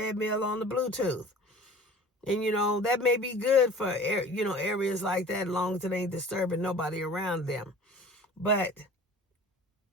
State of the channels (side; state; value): both; normal; correlation 0.44